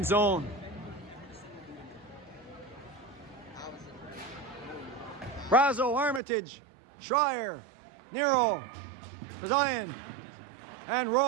zone. Brazo, Armitage, Schreier, Nero, Zion, and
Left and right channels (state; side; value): drops out; left; at 6.2 s